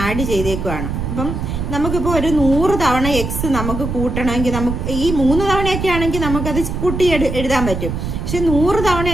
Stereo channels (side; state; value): right; noise; rumble, 4 dB below the sound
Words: ആഡ് ചെയ്തേക്കുവാണ്. അപ്പം നമുക്കിപ്പോൾ ഒരു 100 തവണ എക്സ് നമുക്ക് കൂട്ടണമെങ്കിൽ നമുക്ക് ഈ 3 തവണയൊക്കെ ആണെങ്കിൽ നമുക്കത് കൂട്ടി എഴുതാൻ പറ്റും. പക്ഷെ 100